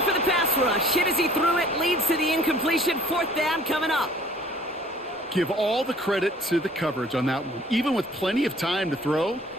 for the pass rush. Hit as he threw it, leads to the incompletion. Fourth down coming up. Give all the credit to the coverage on that one. Even with plenty of time to throw,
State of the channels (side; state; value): both; normal; correlation 0.53